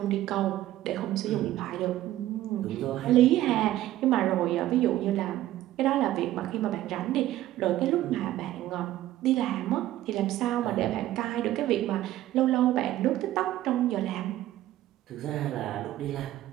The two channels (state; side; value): quieter; left; 14.3 dB